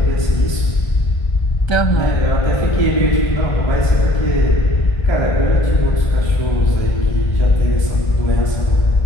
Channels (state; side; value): late; right; 1.2 ms